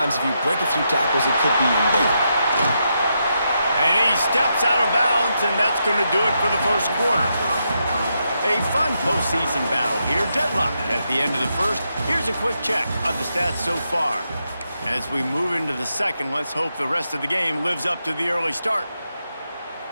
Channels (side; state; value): both; inverted; correlation -0.83